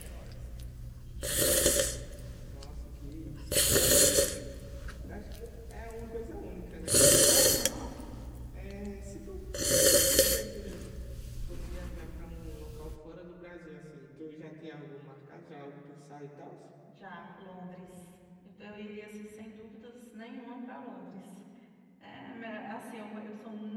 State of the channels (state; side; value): identical; both; correlation 1.00